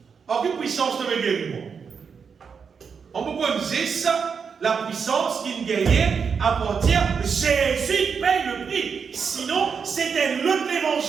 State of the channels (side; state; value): left; quieter; 6.1 dB